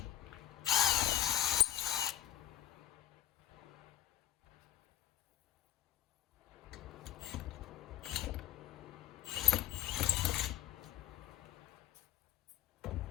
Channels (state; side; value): quieter; right; 13.0 dB